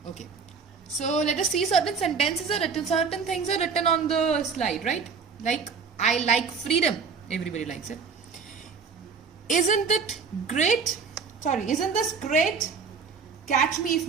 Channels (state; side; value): quieter; left; 5.6 dB